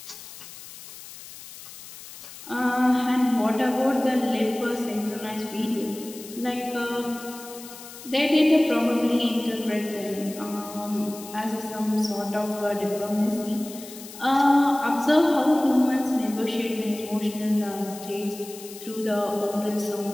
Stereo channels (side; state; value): left; noise; hiss, 15 dB below the sound